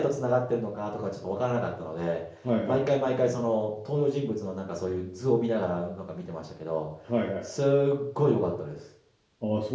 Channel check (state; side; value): identical; both; correlation 1.00